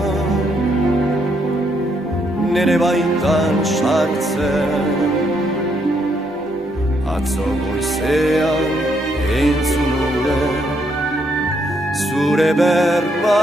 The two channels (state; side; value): normal; both; correlation 0.74